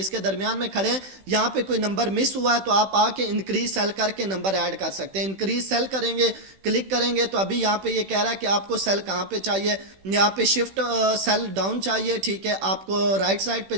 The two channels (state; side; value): late; left; 16 ms